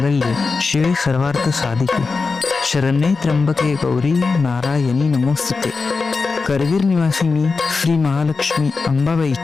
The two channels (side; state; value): right; quieter; 4.4 dB